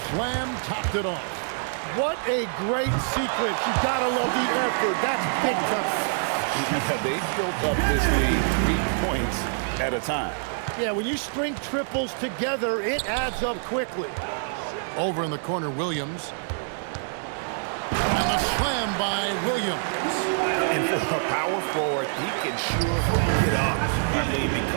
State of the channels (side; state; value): left; silent; digital silence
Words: slam topped it off. What a great sequence. You gotta love the effort. That's big time. Yeah, they built up this lead 3 points at a time. Yeah, when you string triples together, it adds up quickly. Over in the corner, Williams. And the slam by Williams. And for a power forward, he can sure get up. I mean,